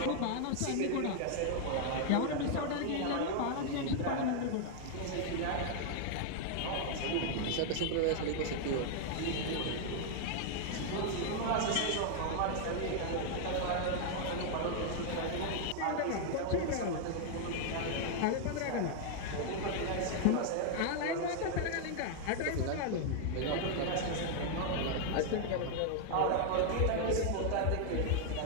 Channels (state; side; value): different; both; correlation 0.00